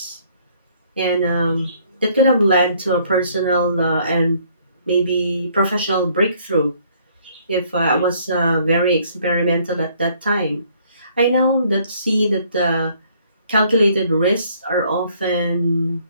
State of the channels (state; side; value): inverted; both; correlation -0.63